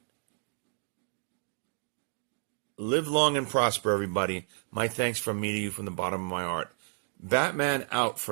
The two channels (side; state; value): left; silent; digital silence